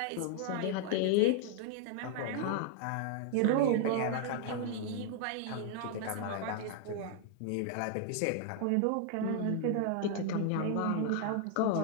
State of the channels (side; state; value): both; different; correlation 0.00